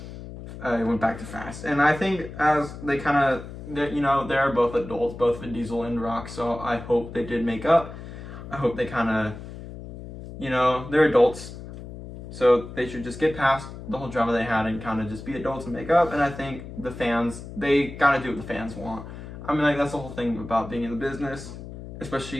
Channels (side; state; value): left; noise; hum, 12 dB below the sound